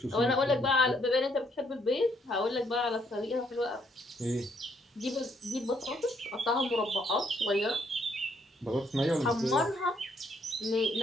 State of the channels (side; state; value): both; normal; correlation 0.70